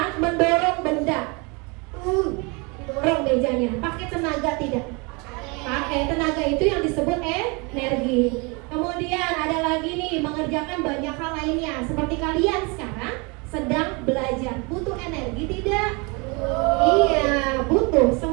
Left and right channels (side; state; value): left; quieter; 29.7 dB